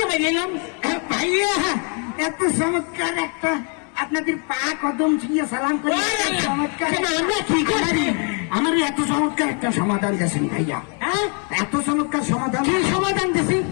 গেলাম। ভাইয়া এত চমৎকার একটা আপনাদের পা কদম ছুঁয়ে সালাম করে চমৎকার আমরা কি করছি? আমার এত চমৎকার একটা সমাধান দিয়েছেন ভাইয়া। হ্যাঁ এত চমৎকার সমাধান কি সমাধান দিছি?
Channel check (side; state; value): right; quieter; 38.8 dB